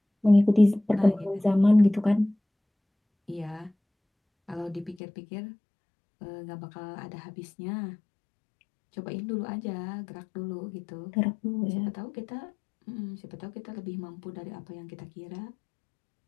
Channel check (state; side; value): drops out; right; at 5.0 s